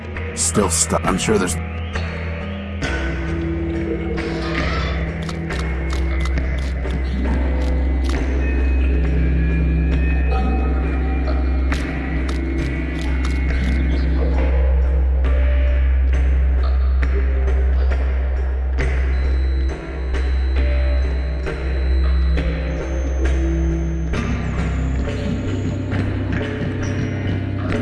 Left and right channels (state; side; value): identical; both; correlation 1.00